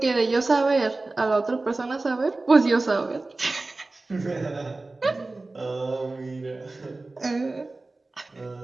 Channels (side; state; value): left; quieter; 3.2 dB